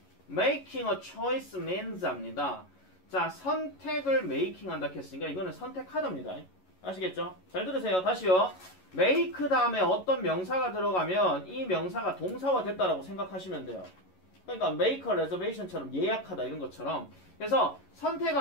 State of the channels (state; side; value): late; right; 11 ms